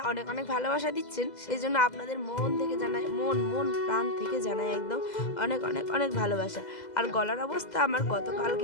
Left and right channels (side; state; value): right; late; 2.0 ms